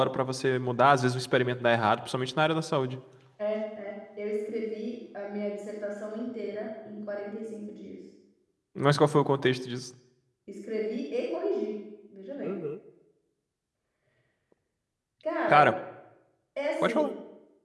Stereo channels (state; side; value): identical; both; correlation 1.00